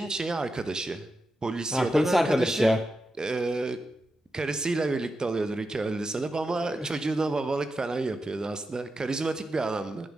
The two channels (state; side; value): normal; both; correlation 0.89